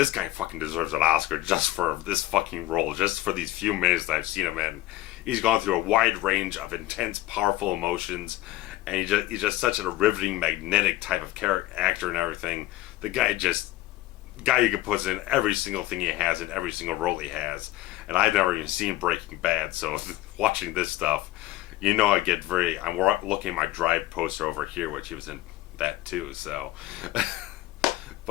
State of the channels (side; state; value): right; quieter; 16.3 dB